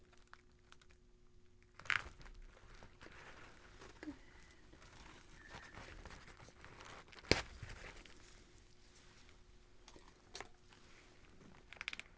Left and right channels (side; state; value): both; identical; correlation 1.00